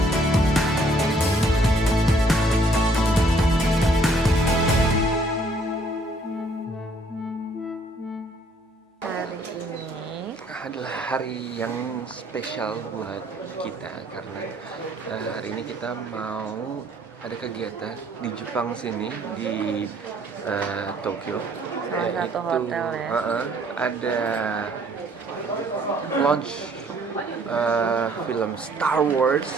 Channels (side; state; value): both; normal; correlation 0.62